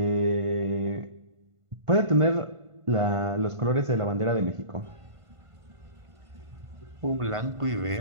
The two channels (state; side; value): late; left; 1.5 ms